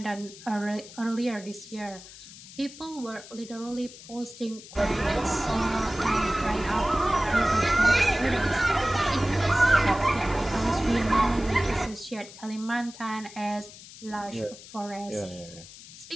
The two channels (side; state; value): left; noise; hiss, 17 dB below the sound